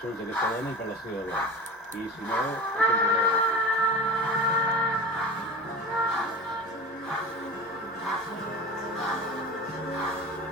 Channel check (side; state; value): both; normal; correlation 0.32